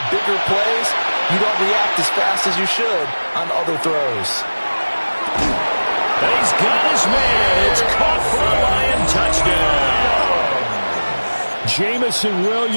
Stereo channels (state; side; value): inverted; both; correlation -1.00